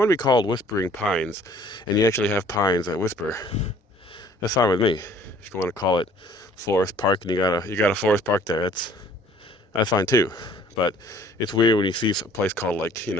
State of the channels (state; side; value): normal; both; correlation 0.55